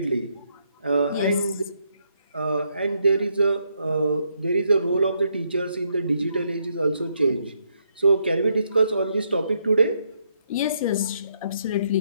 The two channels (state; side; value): inverted; both; correlation -0.76